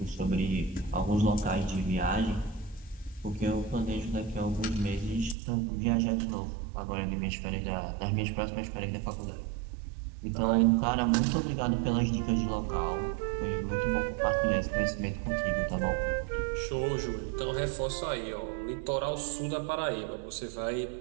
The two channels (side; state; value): left; drops out; at 5.4 s